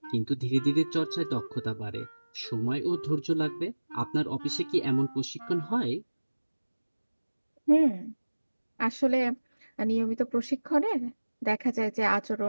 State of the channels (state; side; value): inverted; both; correlation -1.00